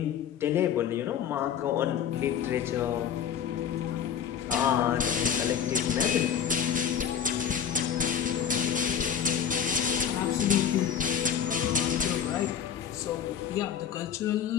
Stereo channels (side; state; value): right; quieter; 8.5 dB